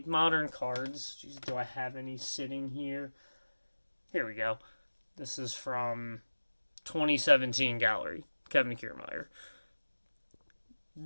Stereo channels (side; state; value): both; inverted; correlation -1.00